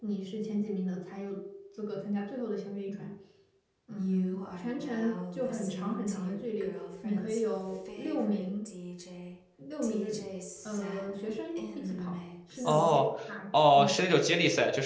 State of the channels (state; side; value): identical; both; correlation 1.00